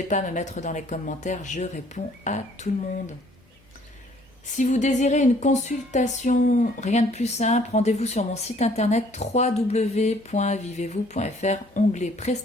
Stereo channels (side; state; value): both; normal; correlation 0.60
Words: pas à me mettre dans les commentaires, je réponds à tout le monde. Si vous désirez une consultation, rien de plus simple, rendez-vous sur mon site internet www.vivez-vous.fr, onglet